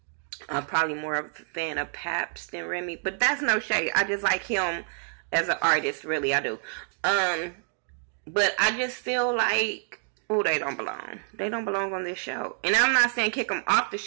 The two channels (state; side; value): silent; left; digital silence